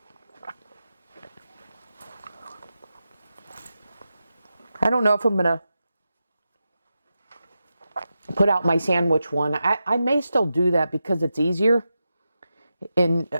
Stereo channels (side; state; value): both; inverted; correlation -0.90